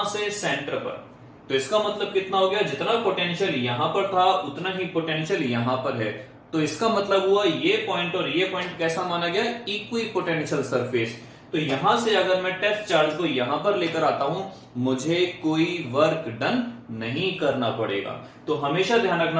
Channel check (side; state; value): both; identical; correlation 1.00